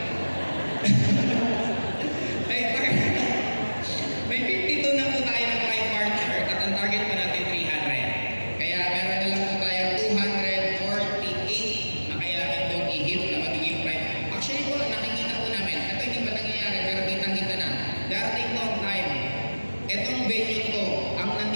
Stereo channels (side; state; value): both; inverted; correlation -1.00